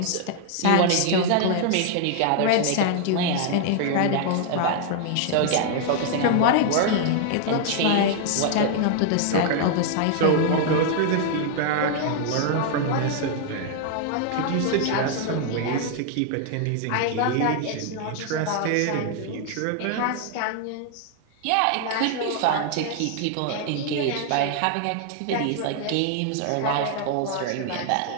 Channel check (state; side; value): different; both; correlation 0.00